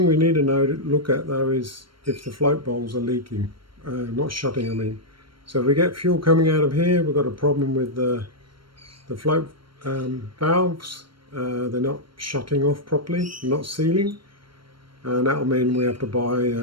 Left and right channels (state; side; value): late; left; 0.73 ms